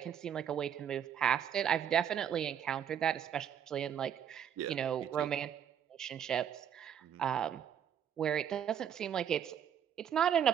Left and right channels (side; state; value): left; quieter; 9.0 dB